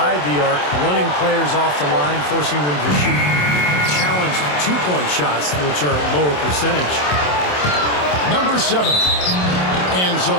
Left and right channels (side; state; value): right; late; 27 ms